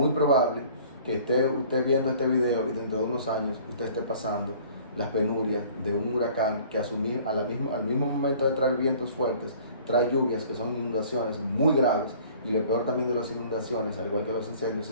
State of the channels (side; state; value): both; inverted; correlation -0.51